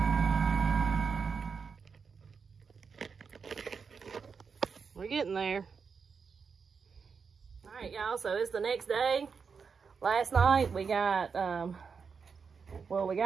We're getting there. All right, y'all, so it's the next day. Last night we got, well, we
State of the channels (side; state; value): left; quieter; 5.7 dB